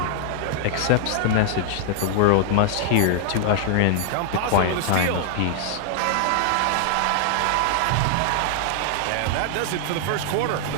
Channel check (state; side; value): different; both; correlation 0.00